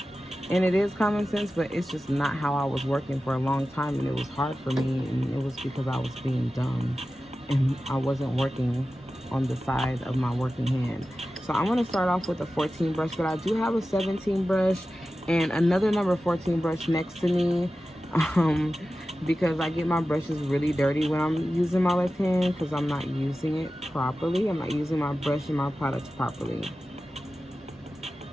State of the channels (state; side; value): normal; both; correlation 0.94